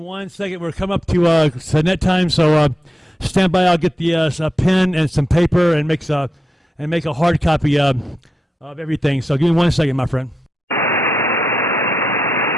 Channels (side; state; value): both; normal; correlation 0.87